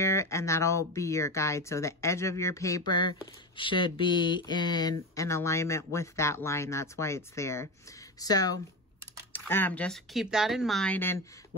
and that'll be your guide. So the edge of your paper should be in an alignment with that line. That's why it's there. So just keep that in mind, and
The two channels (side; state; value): both; normal; correlation 0.21